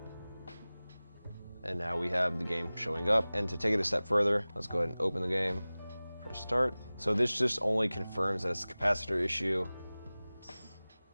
And now we have the game showing up. And to take it a step further, let's go ahead and open the game, press start. So this just only confirms that it's a capacitor issue.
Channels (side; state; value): both; inverted; correlation -0.98